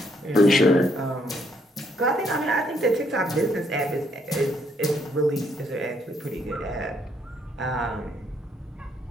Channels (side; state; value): both; normal; correlation 0.71